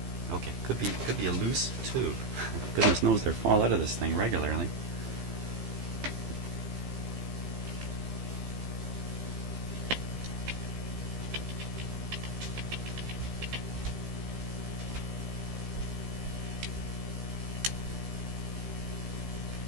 Okay, could be a loose tube. Goodness knows they fall out of this thing regularly.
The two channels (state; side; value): late; left; 15 ms